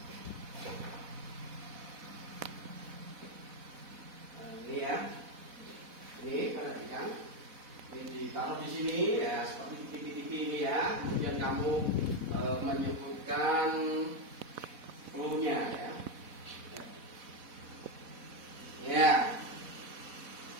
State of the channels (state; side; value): late; left; 4.1 ms